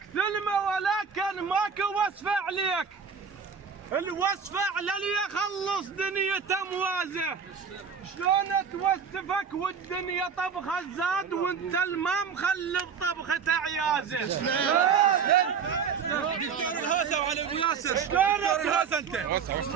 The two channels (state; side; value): quieter; left; 6.4 dB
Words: ثلمه ولكن ماكو وصفه عليك، الوصفه على اللي يخلص دنيته موازه. شلون توسفك والدنيا طبخه زاد وانت الماء مخلف طبخه عيازه. دكتور الهاسه وعلي ابو ياسر. شلون دكتور الهاسه انت؟